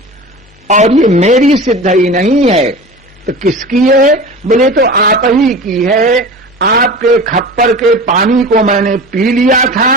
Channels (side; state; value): both; normal; correlation 0.34